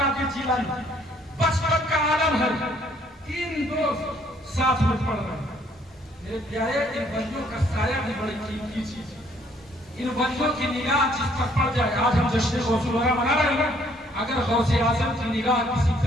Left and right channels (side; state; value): both; normal; correlation 0.64